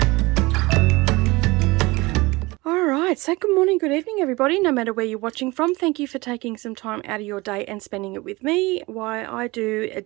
So good morning, good evening everybody, no matter where you're watching from. Thank you for taking some time out of your day and spending it with me while I do a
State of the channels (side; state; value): left; quieter; 22.7 dB